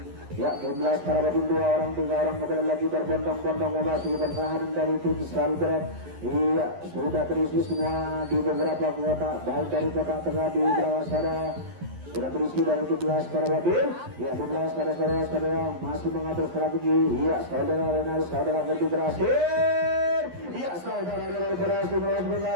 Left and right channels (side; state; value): left; late; 11 ms